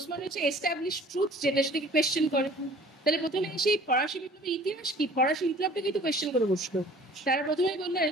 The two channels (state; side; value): normal; both; correlation 0.50